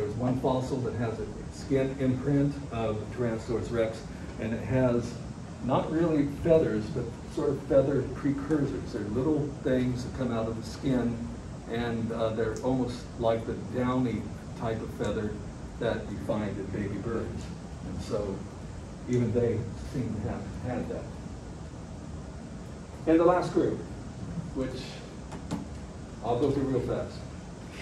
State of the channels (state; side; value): identical; both; correlation 1.00